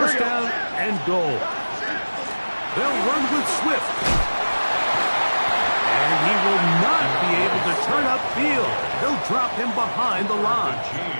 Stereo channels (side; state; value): both; inverted; correlation -1.00